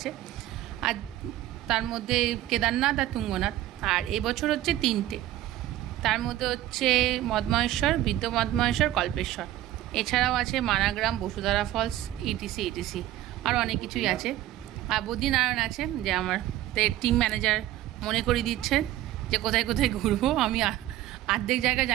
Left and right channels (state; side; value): quieter; left; 14.2 dB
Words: আর তার মধ্যে কেদারনাথ আর তুঙ্গনাথ, আর এবছর হচ্ছে তিনটে। তার মধ্যে হচ্ছে মদমহেশ্বর, বৃদ্ধ মদমহেশ্বর, কল্পেশ্বর, এছাড়াও আছে মানাগ্রাম, বসুধারা ফলস, ইটিসি ইটিসি, আর অনেক কিছুই আছে। আর বদ্রীনারায়ণ আছে, যে আমার টিম ম্যানেজার মনে করিয়ে দিচ্ছে যে কোথায় কোথায় ঘুরবো। আমি অর্ধেক জায়গায়